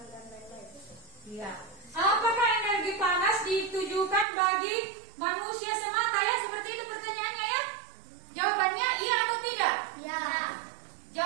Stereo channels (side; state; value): left; drops out; at 4.2 s